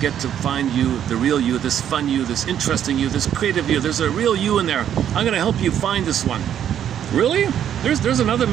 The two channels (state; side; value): quieter; left; 9.9 dB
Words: to find you, the real you, this fun you, this interesting you, this creative you. There's a real you in there. I'm going to help you find this one. Really? There's another